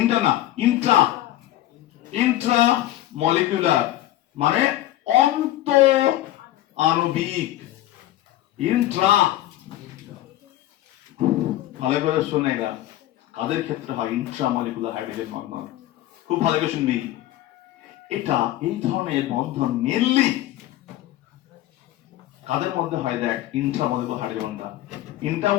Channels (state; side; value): quieter; right; 14.6 dB